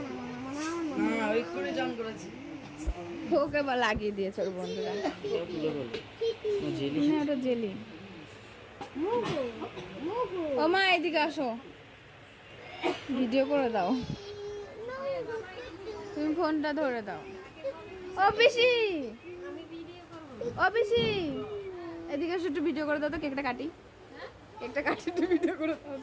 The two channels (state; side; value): identical; both; correlation 1.00